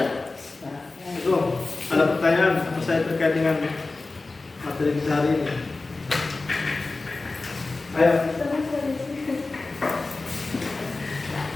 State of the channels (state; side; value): quieter; right; 3.5 dB